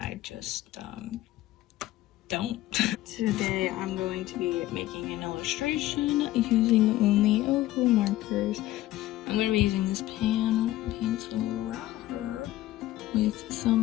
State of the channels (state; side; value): quieter; right; 15.4 dB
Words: I just don't. Today, I'm going to be making an illustration using only Ohuhu markers. I'm going to be using this pencil right here with